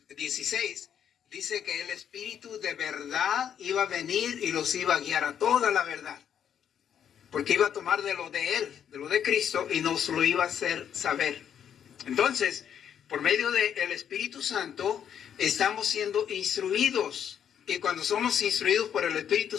16 dice que el Espíritu de verdad iba a venir y los iba a guiar a toda la verdad. Porque iba a tomar de lo de Él, de lo de Cristo, y nos lo iba a hacer saber. Entonces, por medio del Espíritu Santo, estamos siendo instruidos. Y cuando somos instruidos por el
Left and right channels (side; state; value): right; quieter; 8.8 dB